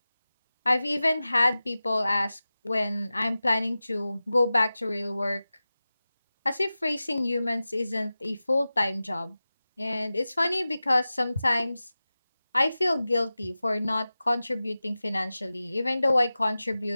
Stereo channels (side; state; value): both; inverted; correlation -0.95